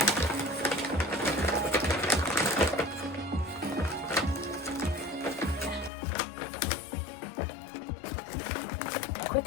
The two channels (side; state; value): right; drops out; at 5.9 s